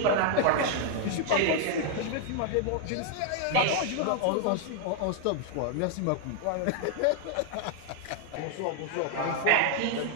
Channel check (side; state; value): both; different; correlation 0.00